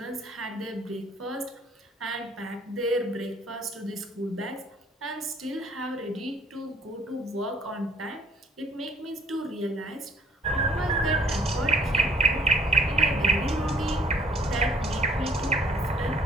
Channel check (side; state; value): both; normal; correlation 0.56